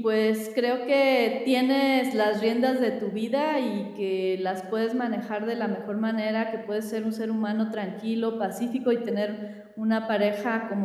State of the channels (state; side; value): identical; both; correlation 1.00